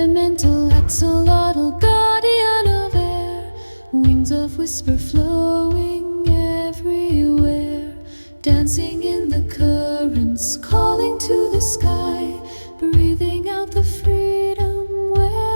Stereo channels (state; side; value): inverted; both; correlation -1.00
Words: axolotl, guardian of air, wings of whisper flowing everywhere, dancing in the currents, calling to the sky, breathing out the freedom